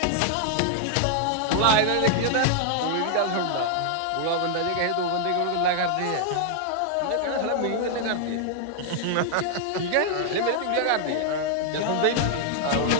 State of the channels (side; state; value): both; different; correlation -0.01